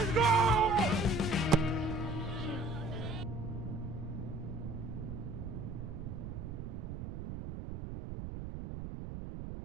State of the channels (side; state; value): right; noise; rumble, 7 dB below the sound